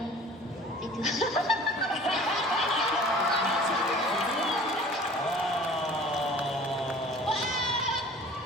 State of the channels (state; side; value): normal; both; correlation 0.46